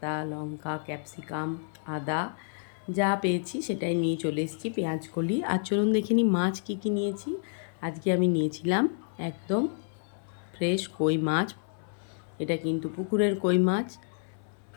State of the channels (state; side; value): silent; right; 58 dB below the other